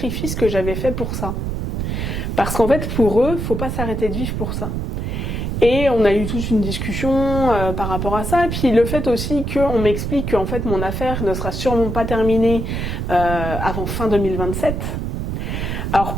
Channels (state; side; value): noise; right; rumble, 3 dB below the sound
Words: que j'avais faits pour ça. Parce qu'en fait, pour eux, faut pas s'arrêter de vivre pour ça. Et on a eu toute une discussion par rapport à ça. Et puis le fait aussi qu'on m'explique qu'en fait mon affaire ne sera sûrement pas terminée avant fin 2027. Alors